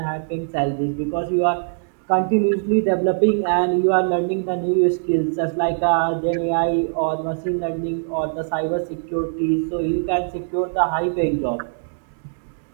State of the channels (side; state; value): left; silent; digital silence